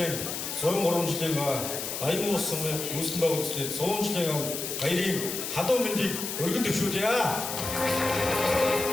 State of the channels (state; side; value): noise; left; hiss, 5 dB below the sound